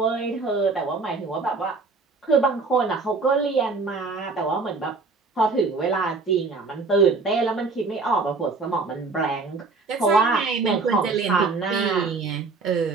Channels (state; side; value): quieter; left; 4.0 dB